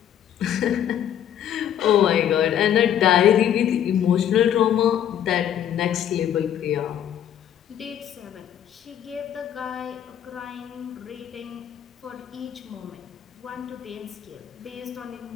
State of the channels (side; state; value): right; quieter; 10.1 dB